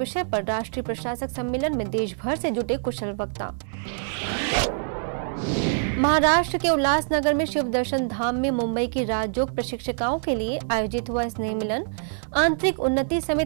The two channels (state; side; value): silent; left; 62 dB below the other